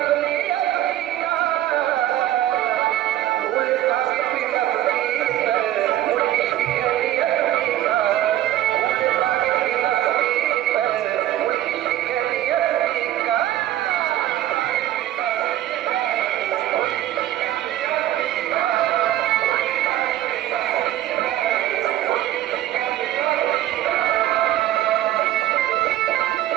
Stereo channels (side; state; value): left; quieter; 13.3 dB